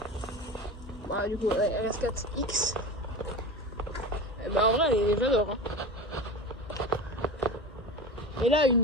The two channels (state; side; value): normal; both; correlation 0.29